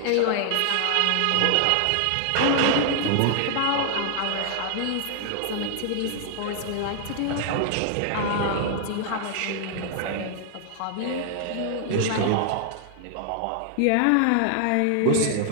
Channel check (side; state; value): both; different; correlation 0.00